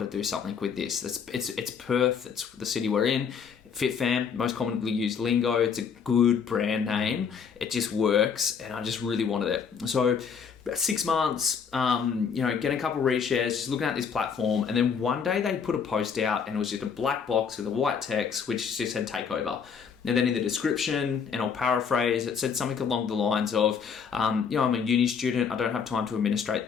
to do something with this. It's Perth. It's the city we're in. Fit Fam, most commonly used lingo. It's a good brand name. It just works, and I just really wanted it. So, about 6 months, getting a couple of reshares, just looking at this platform, and then one day they put a post out, and it was just a black box with a white text, which just said "takeover." And then in the description, and I'll paraphrase, it said something along the lines of, I'm a uni student, I don't have time to administrate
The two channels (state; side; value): quieter; right; 6.6 dB